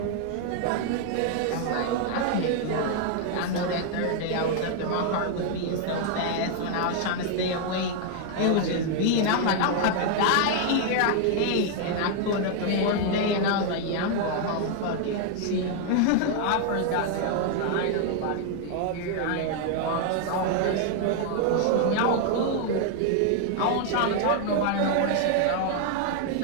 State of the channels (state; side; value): different; both; correlation 0.00